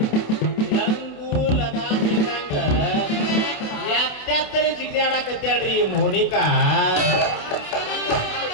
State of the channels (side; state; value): right; late; 28 ms